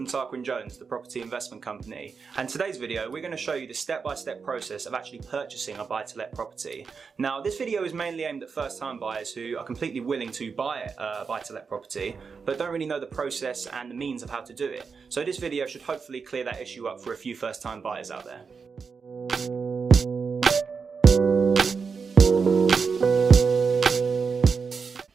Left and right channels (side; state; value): left; quieter; 5.4 dB